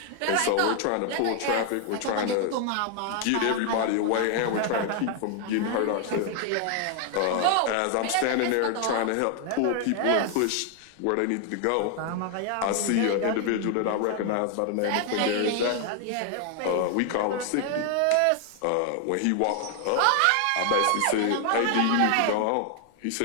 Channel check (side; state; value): both; different; correlation 0.00